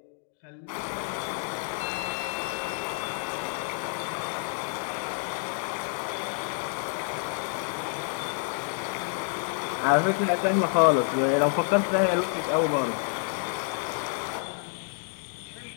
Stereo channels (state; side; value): silent; right; 55 dB below the other